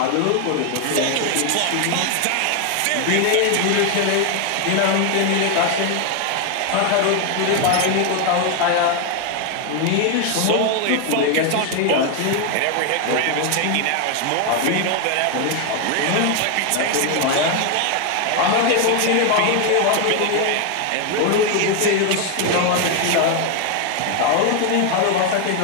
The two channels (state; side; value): different; both; correlation 0.01